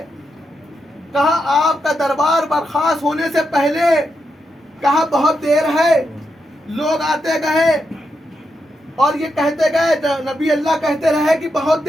کہا آپ کا دربار برخاست ہونے سے پہلے. کہا بہت دیر ہے. لوگ آتے گئے اور یہ کہتے گئے, نبی اللہ کہتے رہے کہ بہت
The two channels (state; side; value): normal; both; correlation 0.84